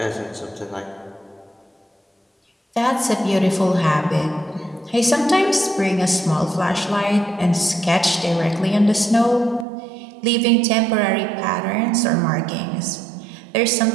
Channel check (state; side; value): drops out; left; at 9.7 s